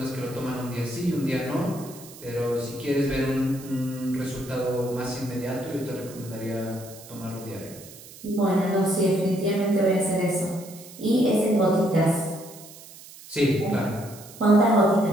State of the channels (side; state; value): right; noise; hiss, 18 dB below the sound